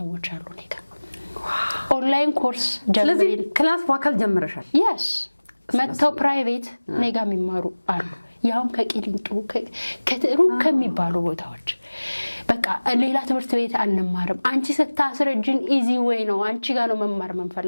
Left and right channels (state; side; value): inverted; both; correlation -1.00